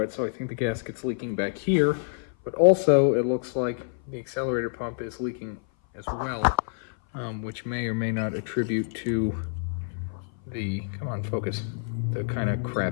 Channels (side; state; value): right; silent; 56 dB below the other